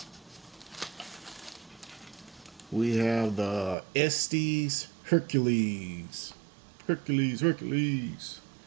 We have the Estes Hercules. Hercules.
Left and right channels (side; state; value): left; drops out; at 3.8 s